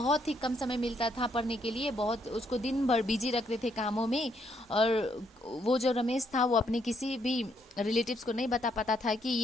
ही कम समय मिलता था पढ़ने के लिए। बहुत उसको दिन भर बिजी रखते थे कामों में। और वो जो रमेश था वो अपने किसी भी रिलेटिव्स को नहीं बता पाता था कि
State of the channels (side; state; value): both; normal; correlation 0.73